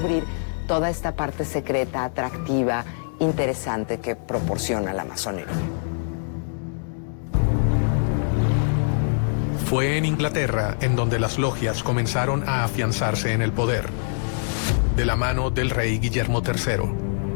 toda esta parte secreta, atractiva, interesante que proporciona la masonería. Fue en Inglaterra en donde las logias comenzaron a afianzarse en el poder, de la mano del rey Guillermo III.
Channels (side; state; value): right; silent; digital silence